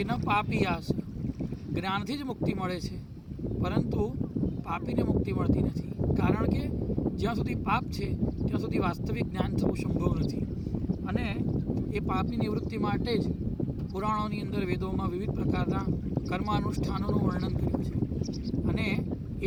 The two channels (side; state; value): both; identical; correlation 1.00